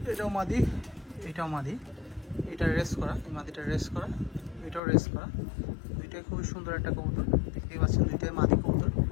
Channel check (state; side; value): drops out; right; at 4.8 s